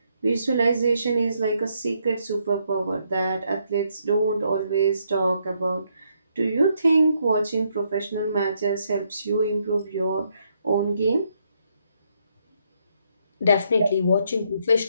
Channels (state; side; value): inverted; both; correlation -0.75